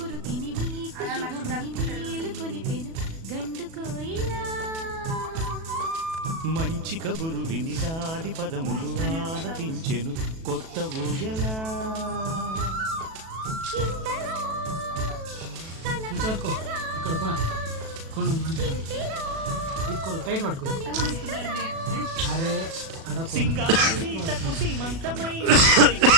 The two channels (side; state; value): left; late; 37 ms